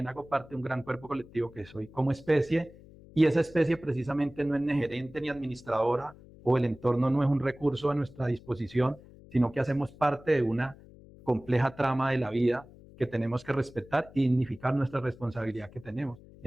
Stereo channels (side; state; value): left; noise; hum, 21 dB below the sound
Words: hago parte de un gran cuerpo colectivo que soy como especie, y esa especie precisamente no es ni gerente ni administradora, o el entorno no es un recurso a nuestra disposición, sino que hacemos parte de una compleja trama de la vida que tenemos que respetar y dignificar nuestra responsabilidad que tenemos